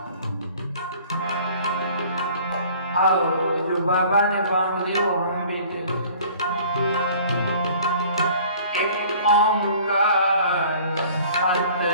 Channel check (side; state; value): both; inverted; correlation -0.50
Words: आओ जो बाबा ने बांग दी वो हम भी दे। एक ओंकार